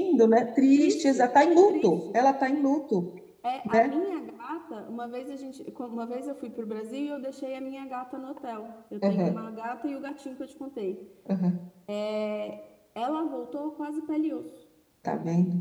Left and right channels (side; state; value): both; identical; correlation 1.00